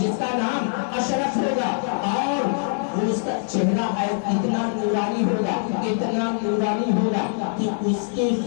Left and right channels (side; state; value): right; silent; 59 dB below the other